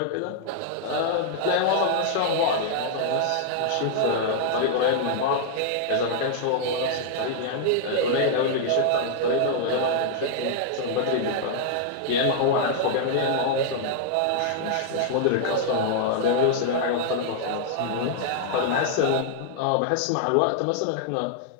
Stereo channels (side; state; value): both; different; correlation -0.01